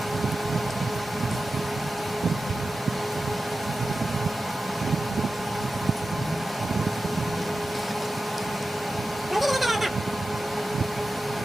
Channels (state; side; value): normal; both; correlation 0.93